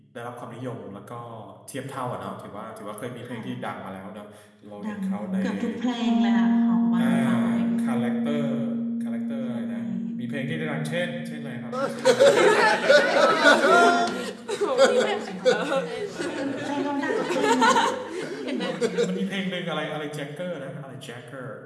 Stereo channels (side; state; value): both; identical; correlation 1.00